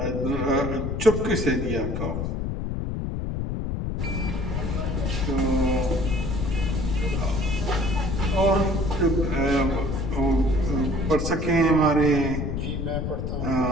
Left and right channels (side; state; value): left; noise; rumble, 2 dB below the sound